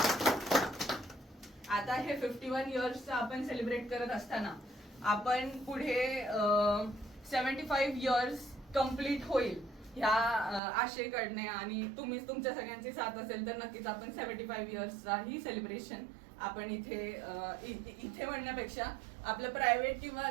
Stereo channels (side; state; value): left; drops out; at 10.6 s